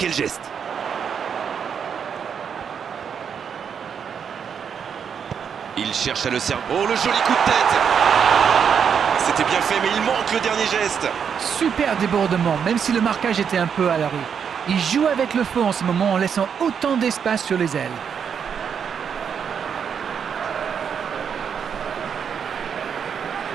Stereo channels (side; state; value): left; quieter; 7.3 dB